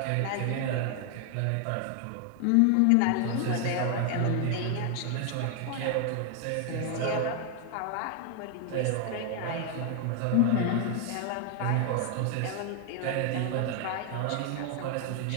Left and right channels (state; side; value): different; both; correlation 0.01